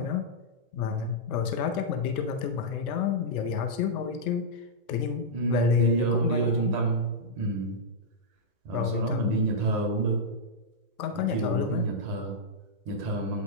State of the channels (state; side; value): late; left; 1.2 ms